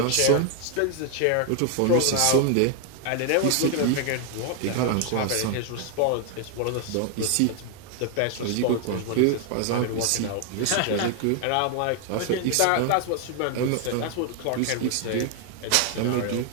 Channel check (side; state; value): both; different; correlation 0.00